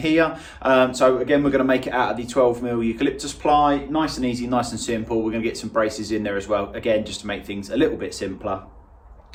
So again, we're going to make it out of the 12mm eucalyptus ply. Nice and easy, nice and simple. We're going to get some braces in there as well, again, just to make things a little bit simpler.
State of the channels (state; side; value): identical; both; correlation 1.00